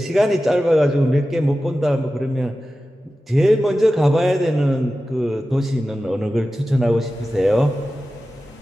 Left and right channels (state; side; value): normal; both; correlation 0.94